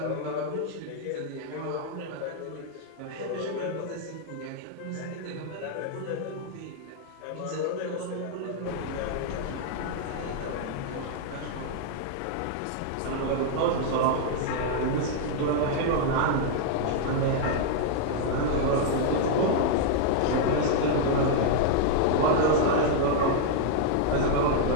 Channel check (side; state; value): both; different; correlation -0.01